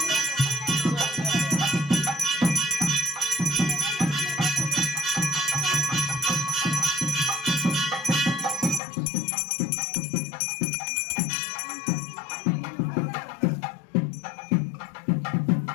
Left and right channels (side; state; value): right; drops out; at 8.8 s